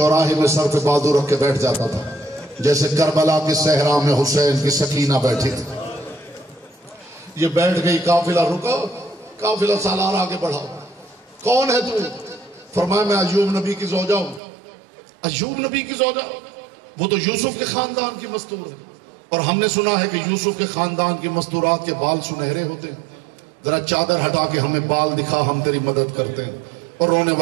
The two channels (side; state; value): left; drops out; at 14.4 s